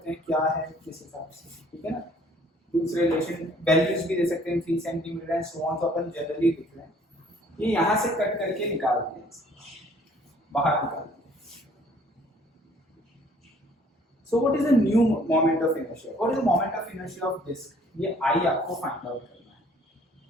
हैं क्या है किस हिसाब से, ठीक है ना। दूसरे रिलेशन वैल्यूज भी दे सकते हैं 3 सेंटीमीटर एंड सो ऑन, तो अपन जनरली लिख रहे हैं। ये यहां से कट करके निकाल दिया, बाहर निकाल दिया। So what is the new moment of inertia? What is the moment of inertia of disk? ये I आपको find out करना है।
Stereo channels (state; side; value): normal; both; correlation 0.58